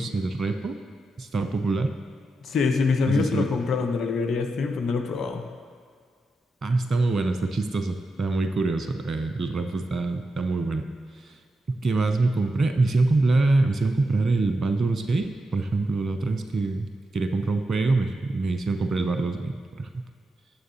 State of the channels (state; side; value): normal; both; correlation 0.88